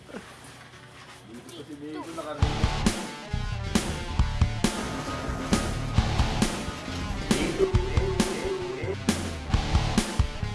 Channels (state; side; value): identical; both; correlation 1.00